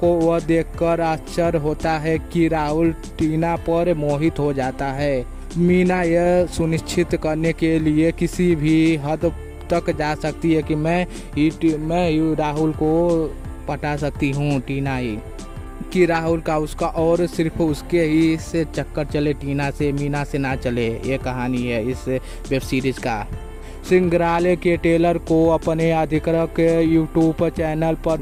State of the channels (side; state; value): both; identical; correlation 1.00